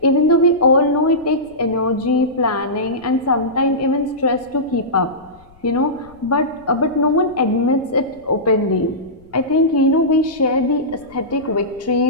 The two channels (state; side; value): noise; left; rumble, 28 dB below the sound